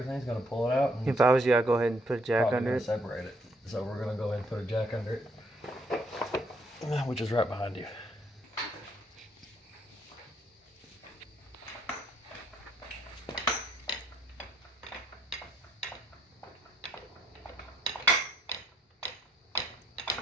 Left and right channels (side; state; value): both; normal; correlation 0.71